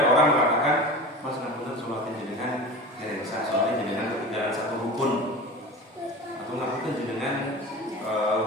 orang mengatakan Mas ngapunten sholatin jenengan dereng sah soalnya jenengan ketinggalan satu rukun, atau ngapunten jenengan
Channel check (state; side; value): normal; both; correlation 0.33